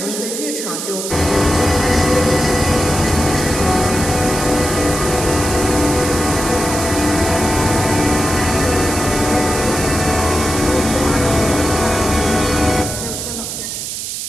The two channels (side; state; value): right; noise; hiss, 5 dB below the sound